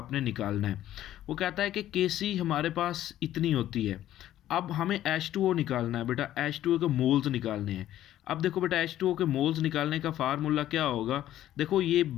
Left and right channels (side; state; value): right; quieter; 12.8 dB